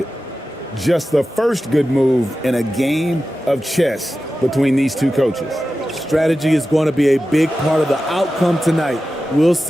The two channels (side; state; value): both; normal; correlation 0.93